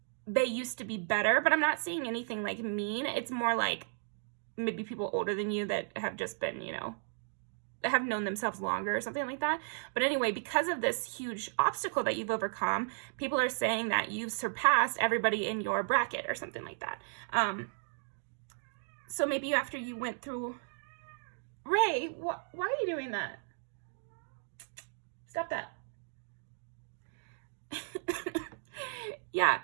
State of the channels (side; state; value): left; silent; digital silence